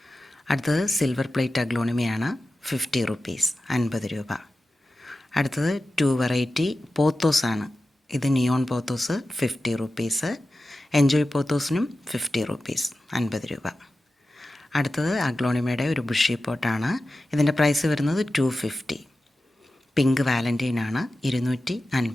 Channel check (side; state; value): both; normal; correlation 0.94